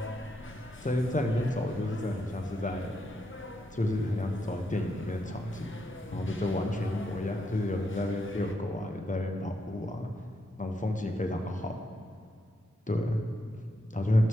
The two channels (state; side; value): normal; both; correlation 0.81